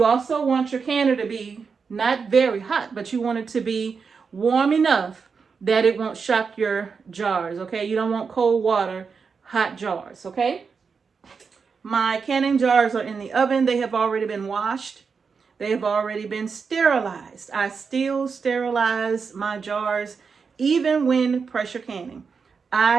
also want your canner to be not very hot, but you want it to be warm enough that it won't shock your jars. Okay, you don't want cold water, hot jars. Okay, my canning jars are in the oven. They have already been washed. They have already been sterilized. I still sterilize my jars even when pressure canning.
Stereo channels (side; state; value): left; quieter; 5.5 dB